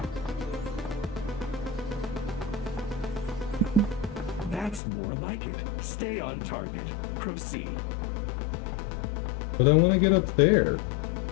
That's more like it. Stay on target. Proceed. But I want to get up there.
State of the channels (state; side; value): drops out; right; at 4.8 s